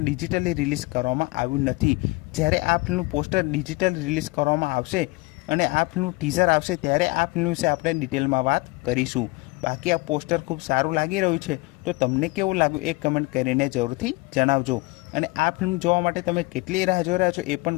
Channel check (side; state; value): right; quieter; 24.8 dB